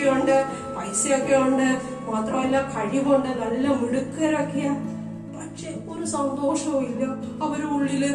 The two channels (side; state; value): both; identical; correlation 1.00